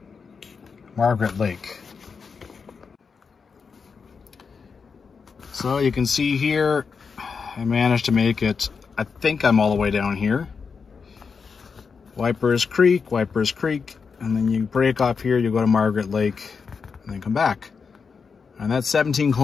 Margaret Lake. So you can see here, I managed to make it, I think I'm all the way down here. Waiparous Creek, and then you break off here, you go to Margaret Lake, and then come back. And that's 17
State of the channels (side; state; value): right; quieter; 5.5 dB